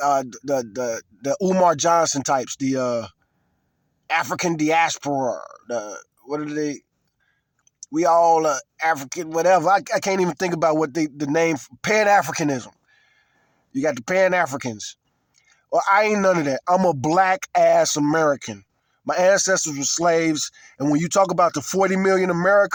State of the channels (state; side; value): identical; both; correlation 1.00